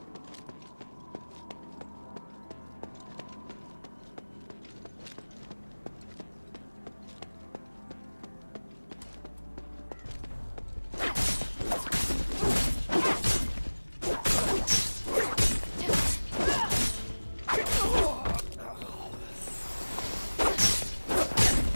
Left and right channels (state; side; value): inverted; both; correlation -1.00